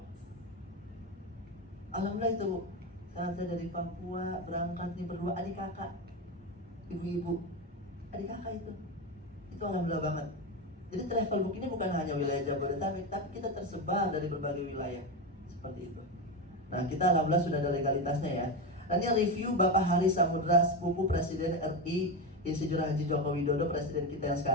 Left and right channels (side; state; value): both; normal; correlation 0.15